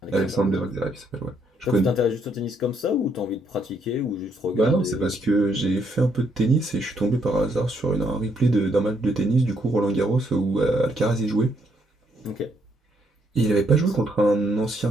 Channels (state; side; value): normal; both; correlation 0.72